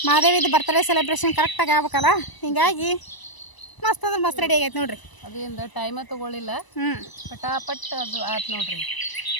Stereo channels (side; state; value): right; late; 1.0 ms